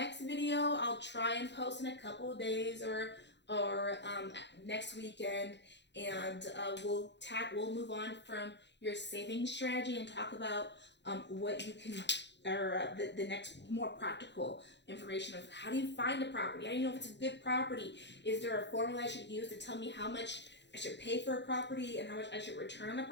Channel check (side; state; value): right; late; 0.51 ms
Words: video I'll try and post in a couple of days or next weekend, and we'll move on from your savings strategy and talk about what you can, or the next more practical information of how do you find a property, how do you know if it's a good property, is there a formula I should use to tell me how much I should pay for a property and how much I should return on a